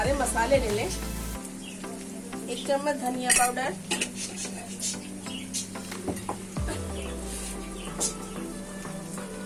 रहे हैं, मसाले ले लें। 1 चम्मच धनिया पाउडर,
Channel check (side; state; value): both; identical; correlation 1.00